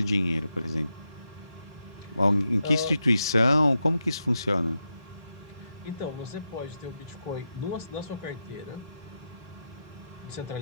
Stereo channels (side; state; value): both; inverted; correlation -0.86